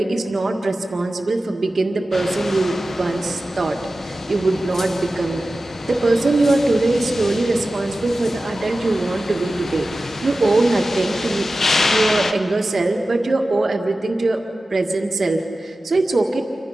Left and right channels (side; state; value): both; normal; correlation 0.95